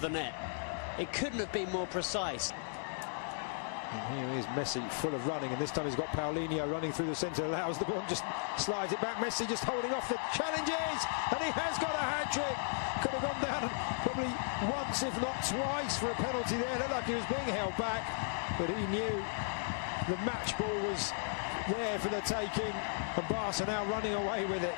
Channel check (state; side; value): silent; right; digital silence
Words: the net. It couldn't have been more precise. And here is Messi, full of running, and this time he's got Paulino running through the centre, allows the ball, just slides it back. Messi just holding off the challenges, and he has got a hat-trick. Could have gone down probably once, if not twice, for a penalty there. Looked like he was being held back, but he knew the match ball was there for the taking, and Barca now running away with it.